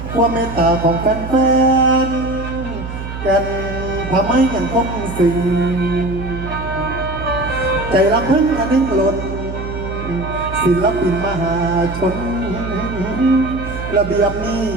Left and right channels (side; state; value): right; noise; hum, 8 dB below the sound